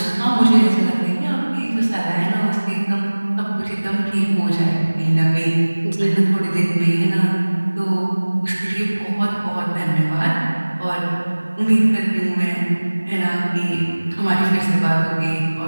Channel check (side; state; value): both; inverted; correlation -1.00